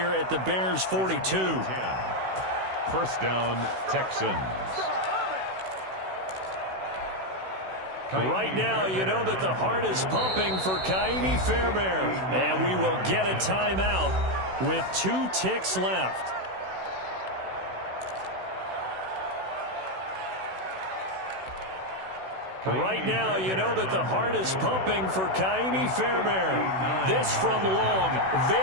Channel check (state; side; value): late; left; 16 ms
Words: at the Bears' 42. 1st down, Texans. Right now, you know that the heart is pumping for Kaimi Fairbairn. And we will get a timeout with 2 ticks left. Right now, you know that the heart is pumping for Kaimi Fairbairn. This from long,